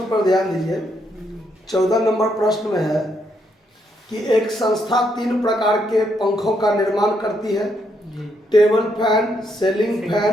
पर ध्यान दीजिए। 14 नंबर प्रश्न में है कि एक संस्था 3 प्रकार के पंखों का निर्माण करती है, table fan, ceiling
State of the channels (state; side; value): normal; both; correlation 0.76